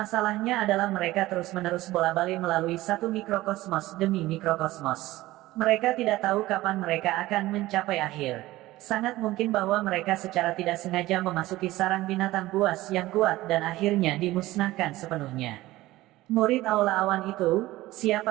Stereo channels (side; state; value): left; quieter; 17.4 dB